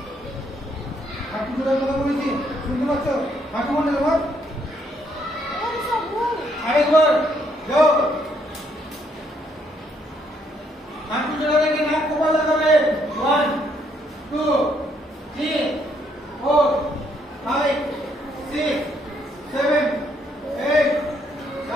হাঁটু জোড়ার কথা বলেছি, শুনতে পাচ্ছ? হাঁটু মনে তোমার আরেকবার যাও। হাঁটু জোড়া রেখে নাক কপাল লাগাবে। 1 2 3 4 5 6 7 8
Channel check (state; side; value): normal; both; correlation 0.71